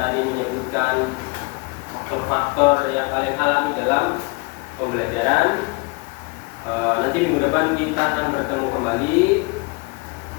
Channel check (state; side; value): quieter; right; 28.0 dB